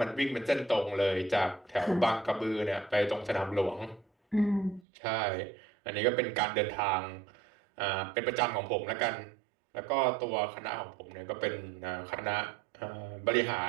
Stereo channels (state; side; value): drops out; left; at 4.8 s